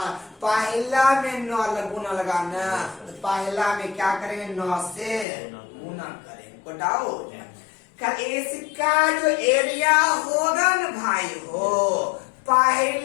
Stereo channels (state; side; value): drops out; right; at 5.2 s